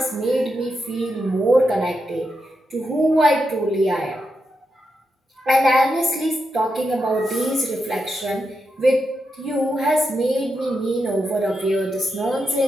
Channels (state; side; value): normal; both; correlation 0.86